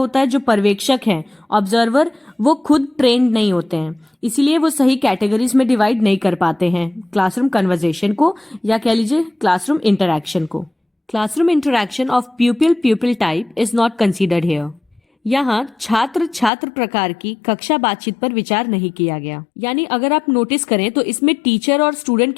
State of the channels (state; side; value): drops out; right; at 16.5 s